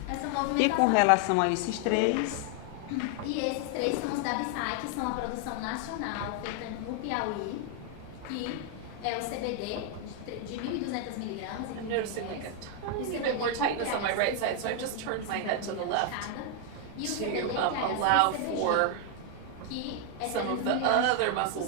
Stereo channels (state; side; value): different; both; correlation 0.00